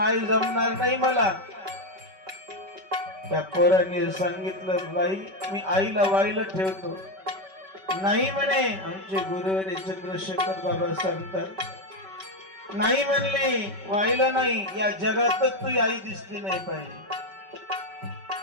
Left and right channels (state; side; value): late; left; 5.2 ms